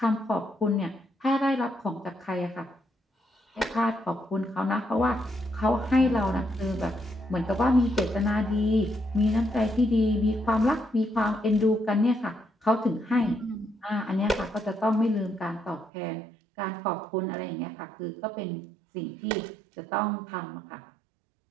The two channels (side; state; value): left; drops out; at 15.9 s